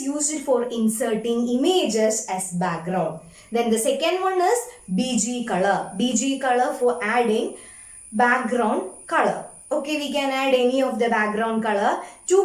for inserting images as background. Then the second one is BG color. BG color for adding background color. Okay, we can add any of the background color.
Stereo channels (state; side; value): identical; both; correlation 1.00